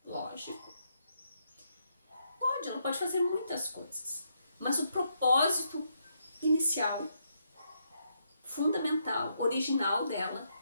lógico. Ela pode fazer muitas coisas. Mas o propósito inicial, fundamental, original dela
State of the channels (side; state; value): both; inverted; correlation -0.78